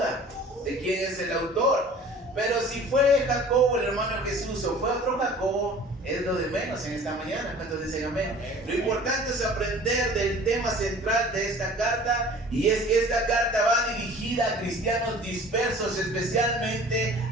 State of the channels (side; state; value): both; normal; correlation 0.46